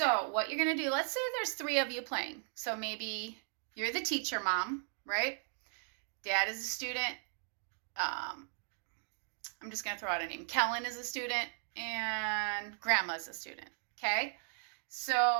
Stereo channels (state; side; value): silent; left; 53 dB below the other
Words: what you're going to do, let's say there's 3 of you playing. So maybe you're the teacher, mom, right? Dad is a student. I'm just going to throw out a name. Kellen is a student and Grandma's a student. Okay,